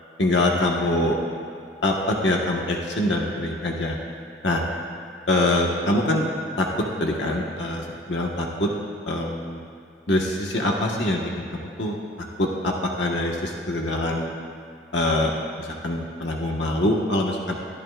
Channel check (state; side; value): normal; both; correlation 0.46